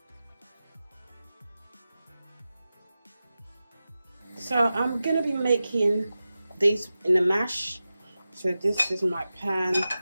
So I'm gonna be making this in a mash. So this is my pan.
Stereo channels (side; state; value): both; inverted; correlation -0.94